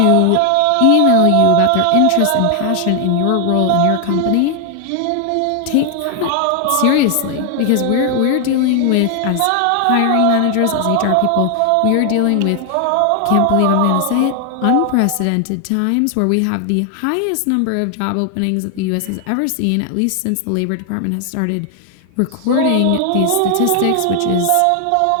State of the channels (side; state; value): both; different; correlation 0.00